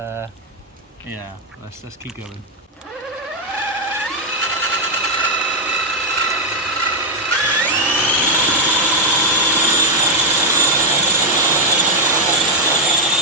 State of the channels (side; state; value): both; normal; correlation 0.01